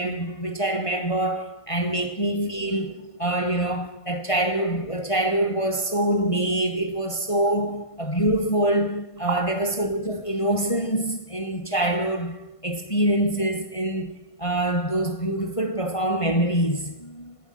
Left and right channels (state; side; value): late; right; 1.5 ms